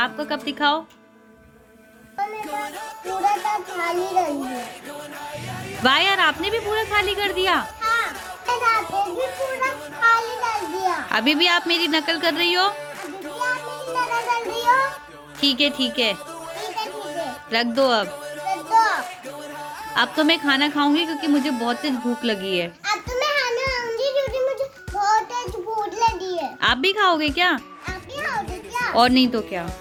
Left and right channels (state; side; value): identical; both; correlation 1.00